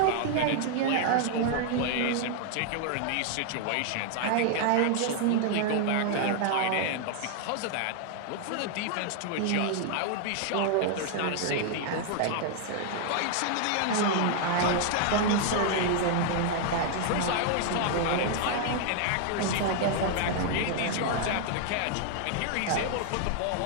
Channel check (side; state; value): both; different; correlation 0.00